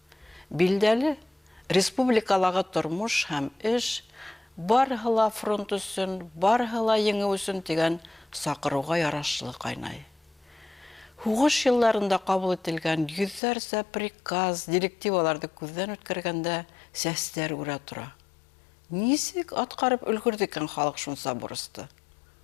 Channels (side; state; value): right; drops out; at 13.4 s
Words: Билдәле, республикалағы тормош һәм эш барыһы ла фронт өсөн, барыһы ла еңеү өсөн тигән саҡырыуға ярашлы ҡайнай. Һуғыш йылларында ҡабул ителгән йөҙҙәрсә приказ, директиваларҙы күҙҙән үткәргәндә сәстәр үрә тора. Нисек атҡарып өлгөрҙө икән халыҡ шунса бурысты?